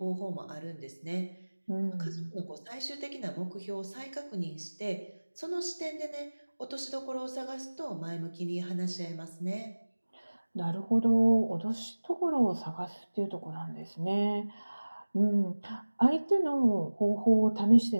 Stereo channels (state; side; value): inverted; both; correlation -1.00